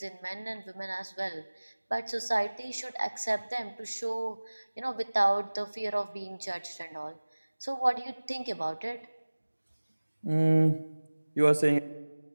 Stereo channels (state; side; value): inverted; both; correlation -1.00